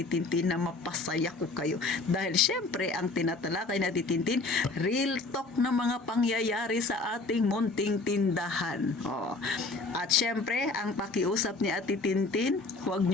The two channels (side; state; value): right; quieter; 3.5 dB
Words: Tintin na mapasaya ko kayo. Dahil syempre, ang tinatalakay ni Ate Tintin, real talk na mga pangyayari sa ating munting tindahan. At syempre, ang pakiusap ni Ate Tintin, huwag